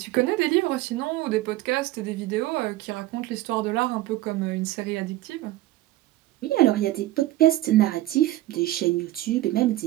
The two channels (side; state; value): left; quieter; 15.9 dB